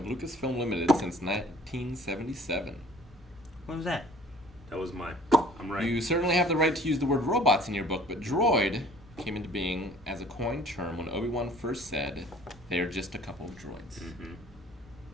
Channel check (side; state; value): both; normal; correlation 0.51